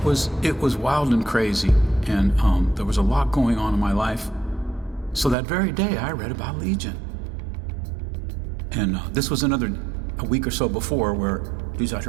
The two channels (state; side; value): drops out; left; at 5.4 s